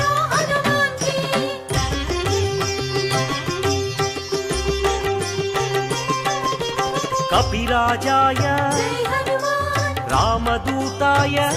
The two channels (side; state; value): both; identical; correlation 1.00